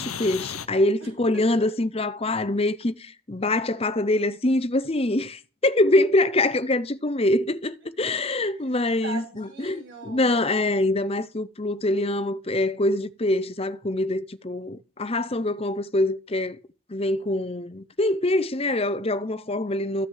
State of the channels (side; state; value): both; normal; correlation 0.51